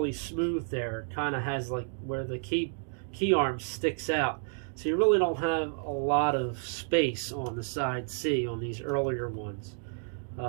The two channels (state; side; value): silent; left; 57 dB below the other